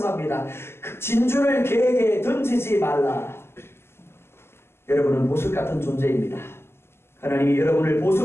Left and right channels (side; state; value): right; late; 0.12 ms